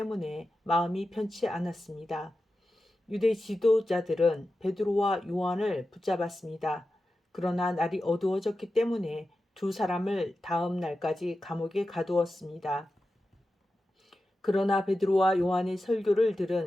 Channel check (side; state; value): both; normal; correlation 0.92